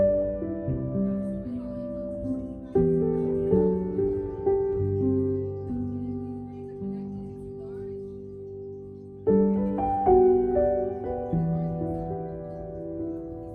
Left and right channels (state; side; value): identical; both; correlation 1.00